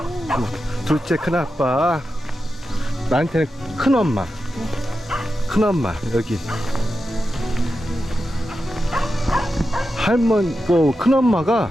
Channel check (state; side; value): normal; both; correlation 0.90